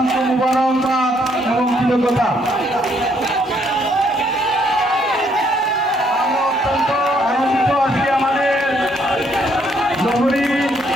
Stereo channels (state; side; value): normal; both; correlation 0.70